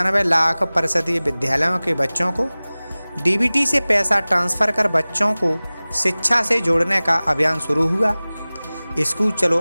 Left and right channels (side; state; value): both; inverted; correlation -0.99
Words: परिषदीय विद्यालयों के बच्चों को डीबीटी से पैसा ट्रांसफ़र कर बच्चों को शिक्षा से जोड़ने का अभियान शुरू हुआ। स्कूल चलो